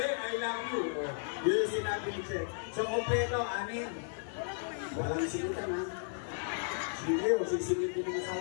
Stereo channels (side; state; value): right; silent; digital silence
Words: I love you. Yun yung sinabi ni Che. So, kompleto, anin. Walang singitan ha. Sige o, sisingit ko ng